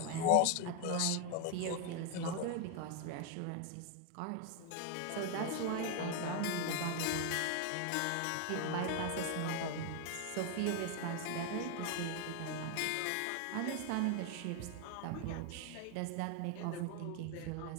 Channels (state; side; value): different; both; correlation 0.01